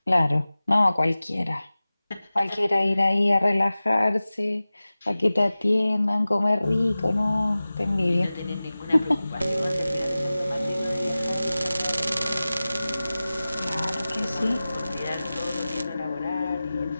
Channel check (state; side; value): inverted; both; correlation -0.97